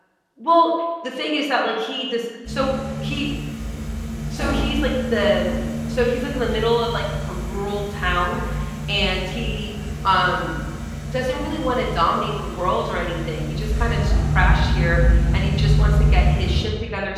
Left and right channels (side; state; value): both; identical; correlation 1.00